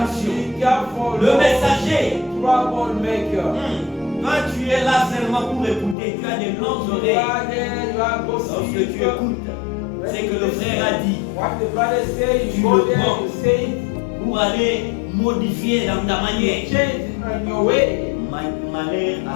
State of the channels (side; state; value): right; drops out; at 6.0 s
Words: Le messager. Toi, tu es là seulement pour écouter. Tu as des longues oreilles. Lorsque tu écoutes, c'est que le frère a dit. Tu le prends pour aller modifier dans ta manière. Malheur à